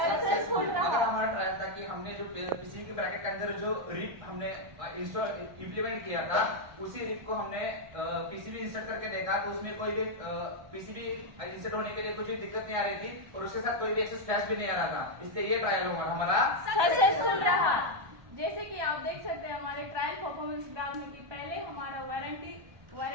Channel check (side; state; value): left; late; 1.2 ms